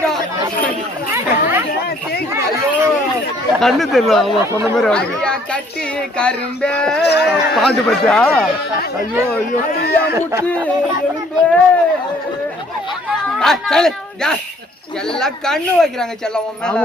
கண்ணு தெரியல. அவன் சொன்ன மாதிரி அவனுக்கு கட்டி கரும்பே பாட்டு பச்சா. ஐயோ ஐயோ முட்டி எலும்பே. எல்லாம் கண்ணு வைக்கிறாங்க செல்லம். ஆமா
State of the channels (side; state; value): both; normal; correlation 0.61